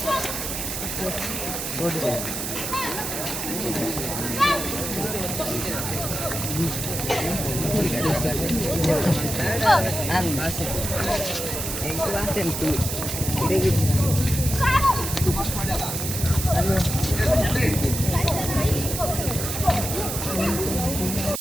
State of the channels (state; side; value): noise; right; hiss, 4 dB below the sound